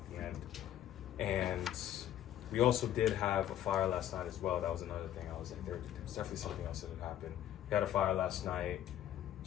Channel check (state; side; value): quieter; right; 11.6 dB